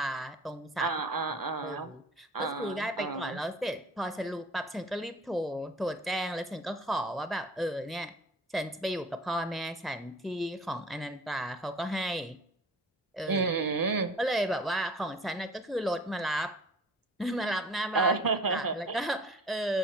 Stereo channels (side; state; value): both; normal; correlation 0.45